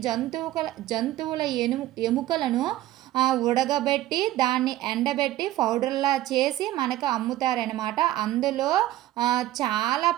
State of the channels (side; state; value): left; quieter; 14.8 dB